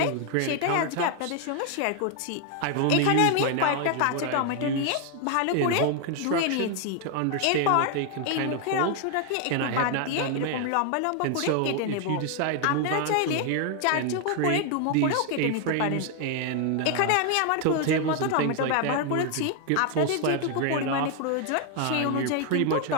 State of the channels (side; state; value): both; different; correlation 0.00